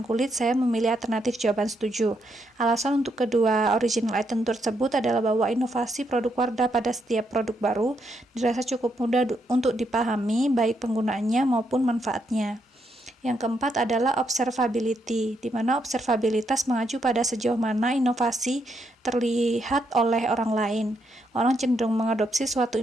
kulit. Saya memilih alternatif jawaban setuju. Alasan untuk kedua original item tersebut adalah bahwa inovasi produk Wardah pada setiap produk baru dirasa cukup mudah untuk dipahami, baik penggunaannya maupun manfaatnya. Yang keempat adalah observability, di mana observabilitas mengacu pada sejauh mana inovasi terlihat oleh orang lain. Orang cenderung mengadopsi suatu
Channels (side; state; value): both; normal; correlation 0.77